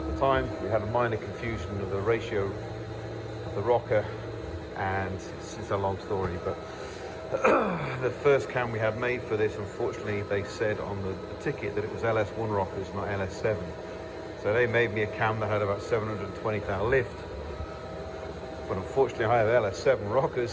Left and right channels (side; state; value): both; identical; correlation 1.00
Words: the time. We had a minor confusion of the ratio of the rocker, and it's a long story, but the first cam we had made for this, unfortunately they said on the ticket that it was LS1 rockers, not LS7. So they made me a cam that had about 720 thou lift, but unfortunately I have LS7